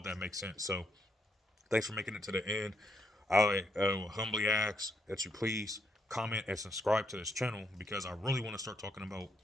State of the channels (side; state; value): both; normal; correlation 0.77